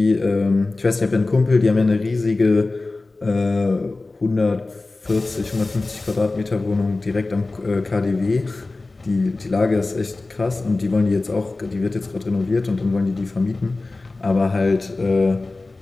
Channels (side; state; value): right; quieter; 3.3 dB